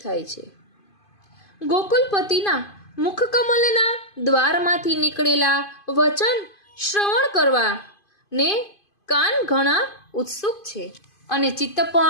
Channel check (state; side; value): late; right; 2.5 ms